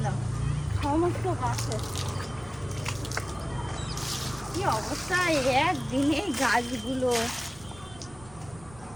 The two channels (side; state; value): right; noise; rumble, 20 dB below the sound